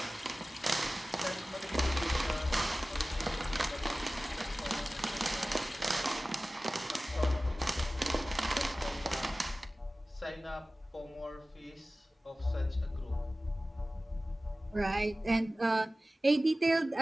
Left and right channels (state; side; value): normal; both; correlation 0.97